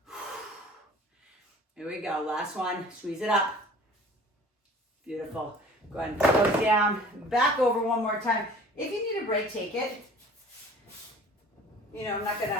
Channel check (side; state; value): both; normal; correlation 0.47